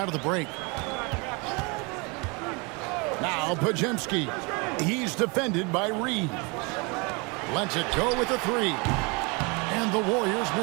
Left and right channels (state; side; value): quieter; left; 29.5 dB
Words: of the break. Now Podziemski. He's defended by Reeves. Lets it go with a three. And the Warriors